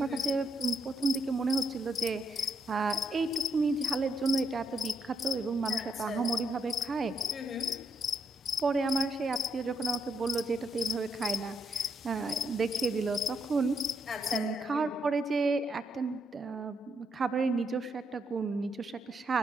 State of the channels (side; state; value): both; normal; correlation 0.77